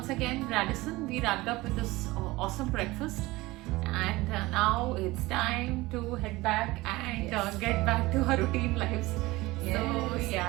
again, Radisson. We wrapped up with this awesome breakfast, and now it's time to head back and get back to our routine lives. So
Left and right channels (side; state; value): left; quieter; 20.3 dB